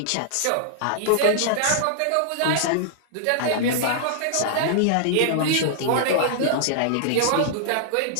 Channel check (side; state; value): both; different; correlation -0.01